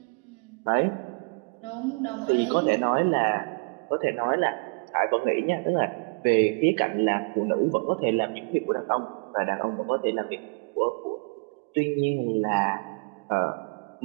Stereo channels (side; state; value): left; quieter; 34.7 dB